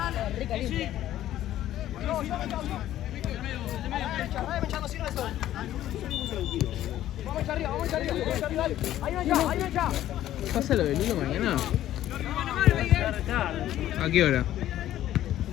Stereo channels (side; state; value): right; quieter; 12.9 dB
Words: ¿Pasa lo del Lilo mañana? ¿A qué hora?